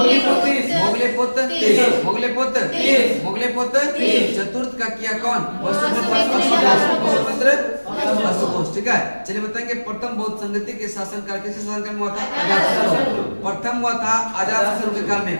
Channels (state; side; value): inverted; both; correlation -1.00